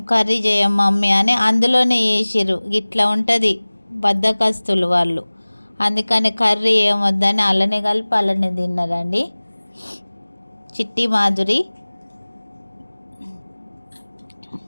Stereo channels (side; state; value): both; inverted; correlation -1.00